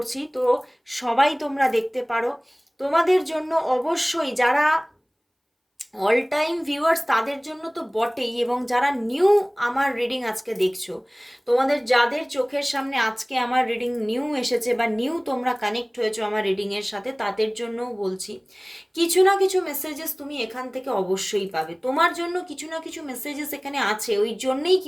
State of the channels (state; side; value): identical; both; correlation 1.00